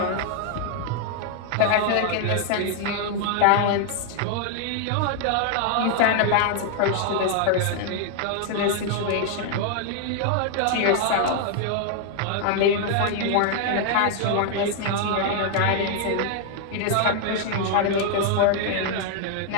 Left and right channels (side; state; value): both; different; correlation 0.00